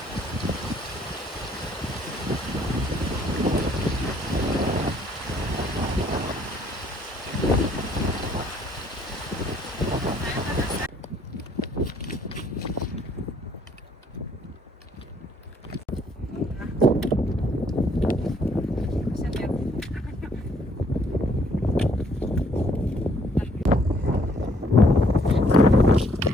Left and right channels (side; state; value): both; normal; correlation 0.65